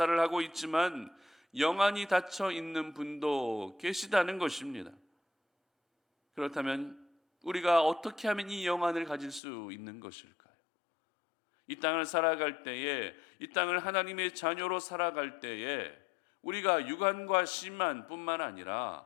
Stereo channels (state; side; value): drops out; right; at 9.4 s